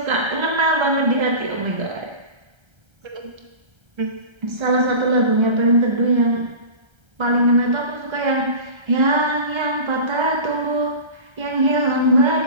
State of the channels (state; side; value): late; left; 1.3 ms